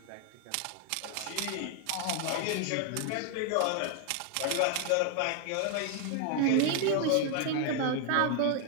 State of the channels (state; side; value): different; both; correlation 0.00